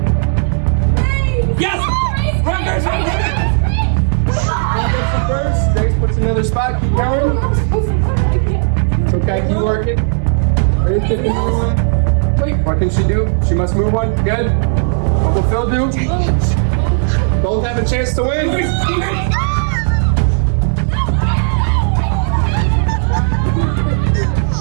Yes! Run, Grace! Run, first. Grace puts another spot. Keep going. It's okay. Keep working. Grace gets another one. What can she do? She must move one. Good. What will Phil do? Both have a chance to win.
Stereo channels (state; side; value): silent; left; digital silence